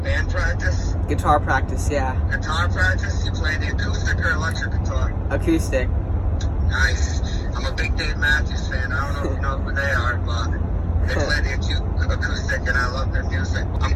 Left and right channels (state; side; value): identical; both; correlation 1.00